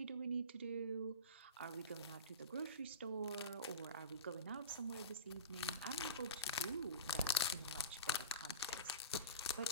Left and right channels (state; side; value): inverted; both; correlation -0.31